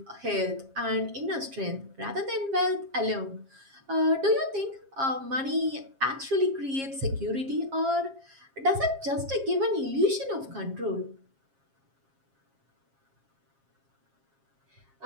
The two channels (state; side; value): late; left; 7.4 ms